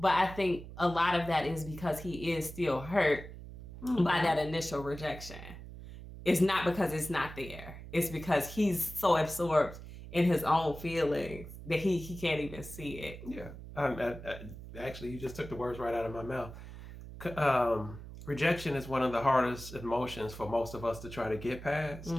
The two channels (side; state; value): right; noise; hum, 13 dB below the sound